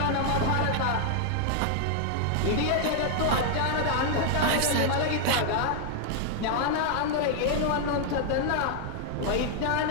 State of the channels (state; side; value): different; both; correlation 0.00